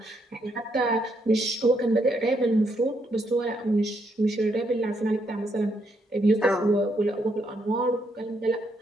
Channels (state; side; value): normal; both; correlation 0.76